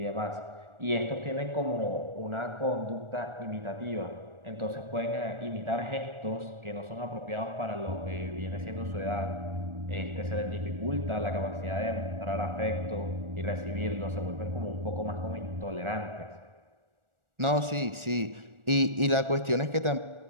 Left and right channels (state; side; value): late; left; 1.4 ms